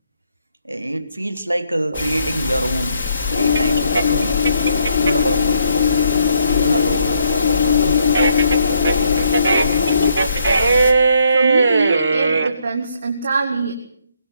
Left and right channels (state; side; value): inverted; both; correlation -0.73